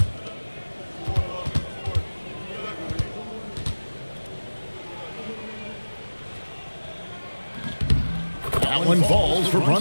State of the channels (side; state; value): both; inverted; correlation -1.00